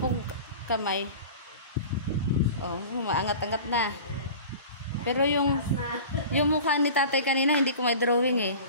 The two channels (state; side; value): inverted; both; correlation -0.38